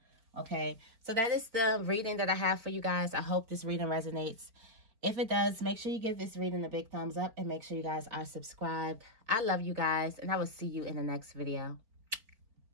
Okay, so that is the reading that I have for you guys. I hope this reading resonates. If it does, make sure you give this reading a big thumbs up and make sure you guys are subscribed. I love you guys, and I will see you in the next video.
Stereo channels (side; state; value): left; late; 4.4 ms